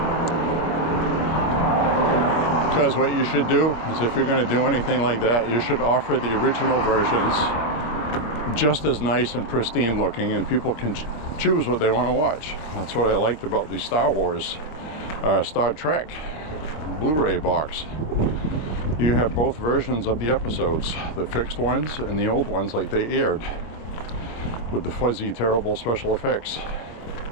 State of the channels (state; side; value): late; right; 26 ms